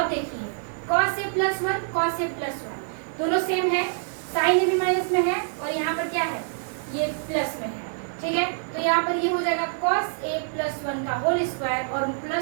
देखिए cos a plus 1, cos a plus 1 दोनों सेम है, sin a भी माइनस में है और यहाँ पर क्या है, ये प्लस में है। ठीक है, तो यहाँ पर ये हो जाएगा cos a प्लस 1 का होल स्क्वायर और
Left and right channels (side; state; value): left; silent; 55 dB below the other